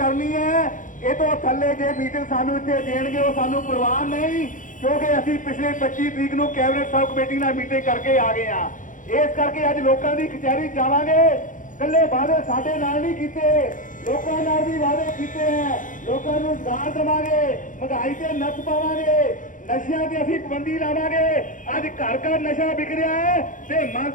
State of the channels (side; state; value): right; late; 0.38 ms